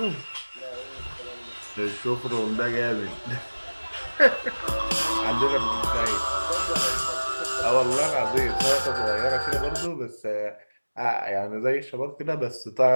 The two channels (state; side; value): inverted; both; correlation -1.00